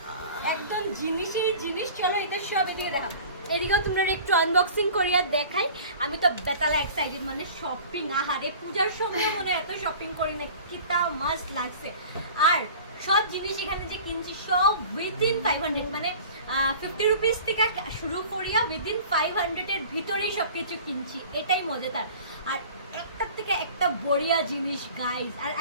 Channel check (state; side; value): inverted; both; correlation -0.43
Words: একদম জিনিসই জিনিস। চলো এটা সব এদিকে দেখা, এদিকেও তোমরা একটু আনবক্সিং করিয়া দেখাই। আমি তো বেতালা এক্সাইটেড, মানে শপিং। আহারে পূজার সময় মনে এত শপিং করি না, কিতা মাস্ট লাগছে। আর সব জিনিস এখানে যে কিনছি সব উইদিন 500, মানে 50 রুপিস থেকে শুরু করিয়া উইদিন 500-এর ভিতরেই সব কিছু কিনছি। এটাই মজাদার। আর একটার থেকে একটা বড়িয়া জিনিস গাইজ। আর